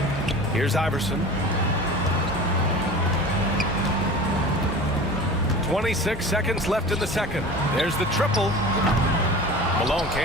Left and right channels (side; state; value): both; normal; correlation 0.37